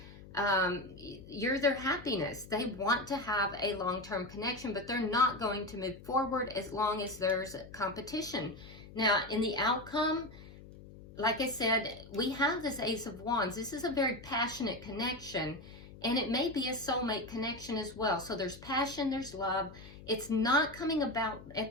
You're their happiness. They want to have a long-term connection, but they're not going to move forward as long as there's competition. Now, in the outcome, like I said, we have this Ace of Wands. This is a very passionate connection, and it may be a soulmate connection as well. So there's passion, there's love. It's not coming about at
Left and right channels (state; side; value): noise; left; hum, 17 dB below the sound